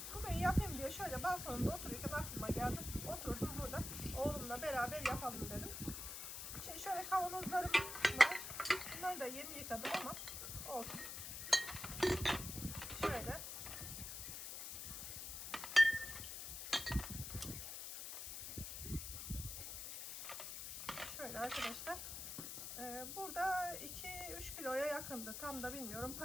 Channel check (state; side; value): noise; left; hiss, 6 dB below the sound